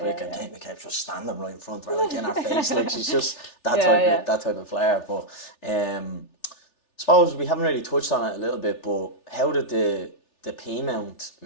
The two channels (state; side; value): late; right; 3.4 ms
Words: and Kate McCabe just standing right in front of her, like in her face, like she's just that type of player. But suppose we haven't really touched on it a little bit, but how did the Peamount